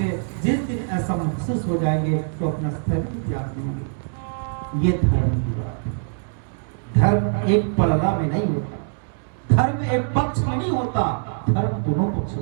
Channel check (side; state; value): left; silent; digital silence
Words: जिस दिन ऐसा महसूस हो जाएंगे तो अपना स्तर त्याग देंगे। ये धर्म की बात है। धर्म एक पलड़ा में नहीं होता, धर्म एक पक्ष में नहीं होता, धर्म दोनों पक्ष